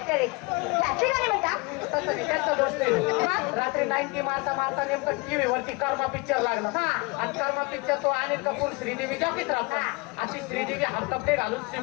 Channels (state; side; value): quieter; right; 27.2 dB